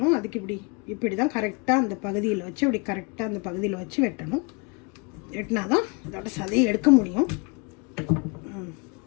அதுக்கு இப்படி தான் கரெக்டாக அந்த பகுதியில் வச்சு இப்படி கரெக்டாக அந்த பகுதியில் வச்சு வெட்டணும். வெட்டினா தான் அதோட சதையை எடுக்க முடியும்.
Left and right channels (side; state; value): right; quieter; 31.1 dB